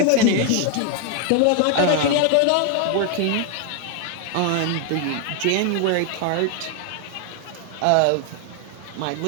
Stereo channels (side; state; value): both; different; correlation 0.00